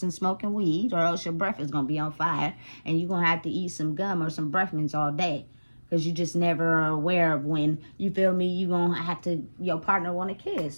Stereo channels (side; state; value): both; inverted; correlation -1.00